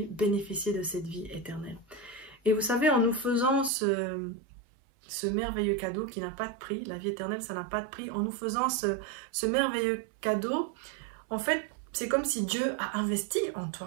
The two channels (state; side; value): drops out; left; at 3.7 s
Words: bénéficier de cette vie éternelle. Et vous savez, en nous faisant ce merveilleux cadeau qui n'a pas de prix, la vie éternelle ça n'a pas de prix, en nous faisant ce merveilleux cadeau, en fait c'est comme si Dieu a investi en